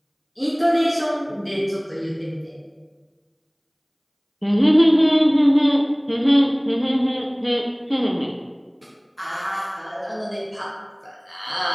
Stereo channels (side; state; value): both; identical; correlation 1.00